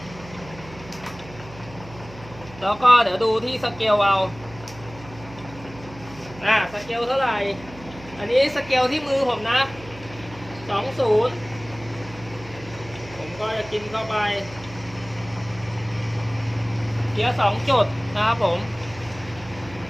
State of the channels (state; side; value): noise; right; hum, 18 dB below the sound